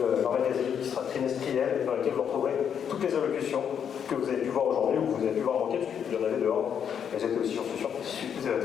leur magazine qui sera trimestriel, dans lequel vous retrouverez toutes les allocutions que vous avez pu voir aujourd'hui ou que vous avez pu voir manquer, parce qu'il y en avait dehors. Elles étaient aussi, j'en suis sûr,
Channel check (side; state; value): right; quieter; 8.1 dB